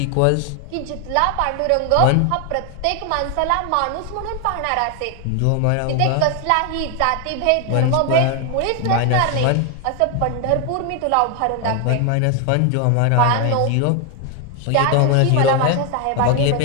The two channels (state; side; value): different; both; correlation 0.01